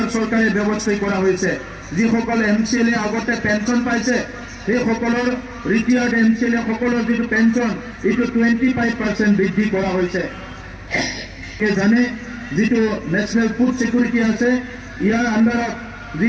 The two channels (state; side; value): identical; both; correlation 1.00